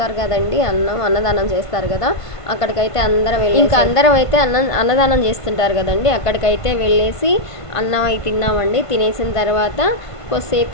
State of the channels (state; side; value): late; right; 1.5 ms